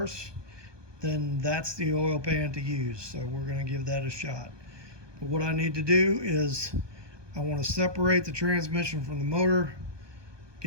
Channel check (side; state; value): left; late; 1.2 ms